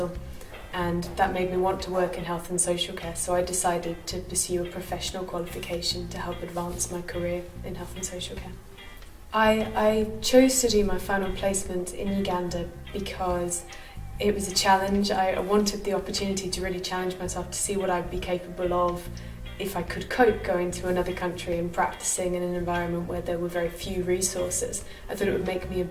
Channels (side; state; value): both; identical; correlation 1.00